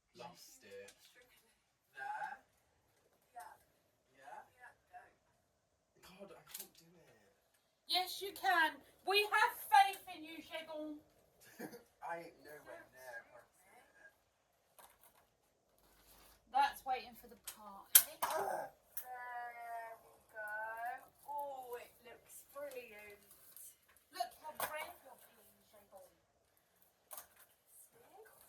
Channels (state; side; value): identical; both; correlation 1.00